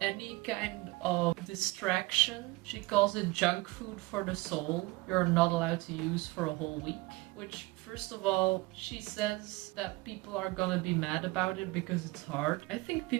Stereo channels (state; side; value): quieter; left; 22.3 dB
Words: kind of distraction, she calls it junk food for the soul, you're not allowed to use for a whole week. Which, first of all, she says that people are gonna be mad about it because it's hard. I think